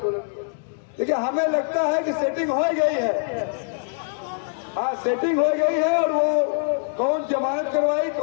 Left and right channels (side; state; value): right; silent; digital silence